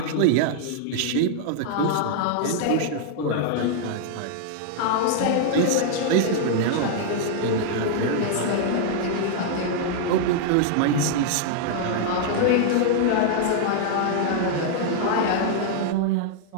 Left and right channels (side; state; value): both; different; correlation -0.01